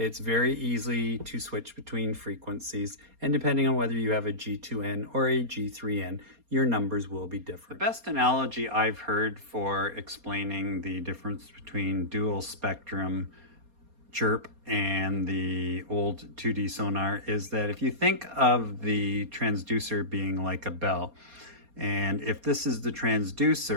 very easy to switch between frequencies, and depending on whether you have a G2N or a G3N, your numbers will be different. The best analogy I've heard for explaining the difference between dual spectrum CHIRP and the old 2D sonar is that if you think of the transducer being like a bell, and if this is the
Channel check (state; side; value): late; left; 4.2 ms